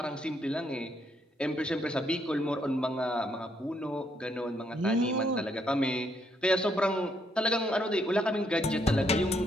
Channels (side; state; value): both; normal; correlation 0.73